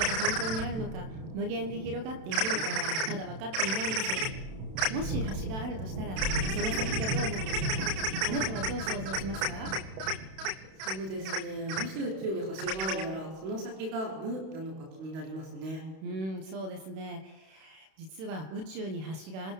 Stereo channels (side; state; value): left; late; 32 ms